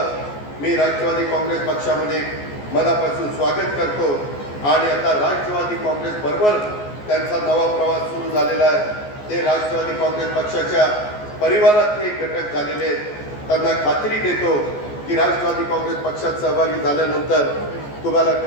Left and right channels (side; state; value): right; late; 14 ms